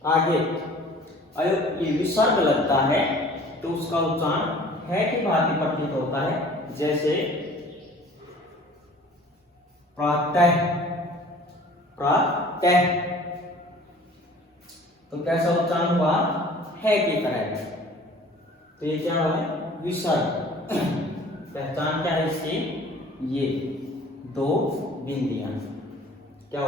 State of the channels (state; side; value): normal; both; correlation 0.48